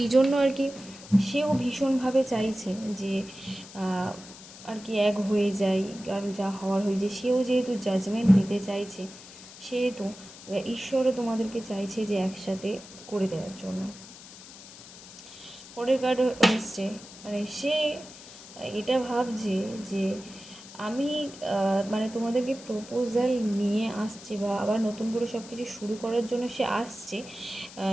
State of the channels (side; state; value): left; noise; hiss, 17 dB below the sound